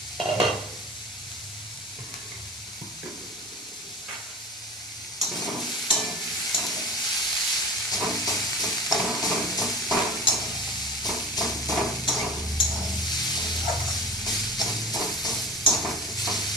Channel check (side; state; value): both; normal; correlation 0.37